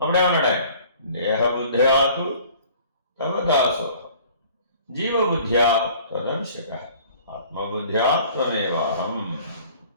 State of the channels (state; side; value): inverted; both; correlation -0.51